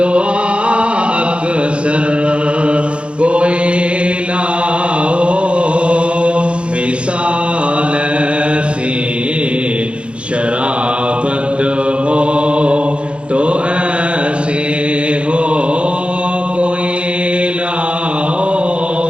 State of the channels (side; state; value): left; late; 0.058 ms